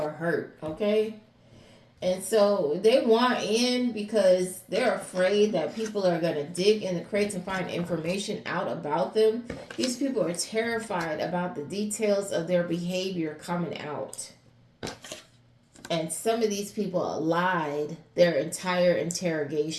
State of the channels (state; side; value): identical; both; correlation 1.00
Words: hurt, okay? And so they want in because they're afraid that people are going to dig in the crates and find information out about them. These people are terrified about the details of their behavior coming out. And some of these people lied their entire